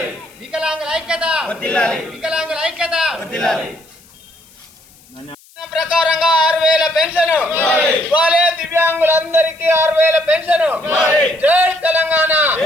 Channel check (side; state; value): left; noise; hiss, 27 dB below the sound